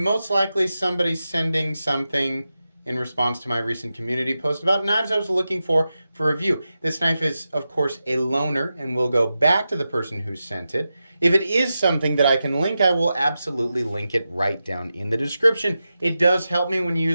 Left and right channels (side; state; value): both; inverted; correlation -0.91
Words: likely somebody sending something in response to my recent community post about knives I was looking for review. This knife is, of course, a loaner, and will go back to the person who sent it. If it is something that I can link, I will absolutely link it right down in the description. It does help me when you